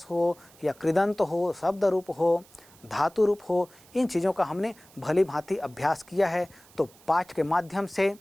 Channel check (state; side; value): noise; right; hiss, 26 dB below the sound